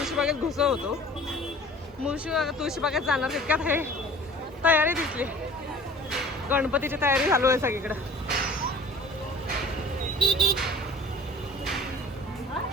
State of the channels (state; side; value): normal; both; correlation 0.46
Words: घुसो होतो. तुळशीबागेत जाणार तितक्यात हे तयारी दिसली. गणपतीची तयारी चालू आहे सगळीकडे.